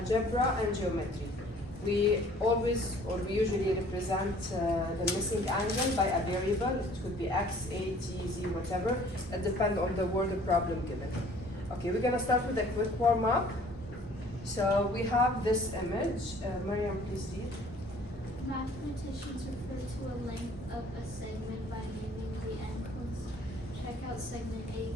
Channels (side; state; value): both; normal; correlation 0.54